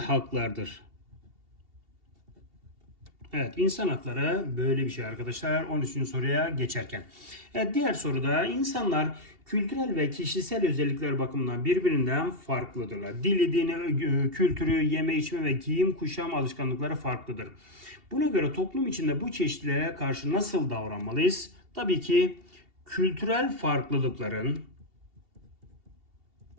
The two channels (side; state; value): left; late; 2.7 ms